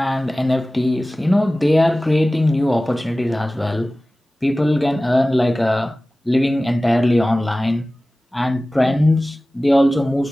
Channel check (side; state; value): both; normal; correlation 0.97